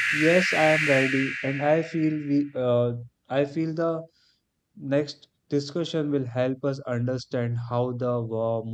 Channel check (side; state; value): both; identical; correlation 1.00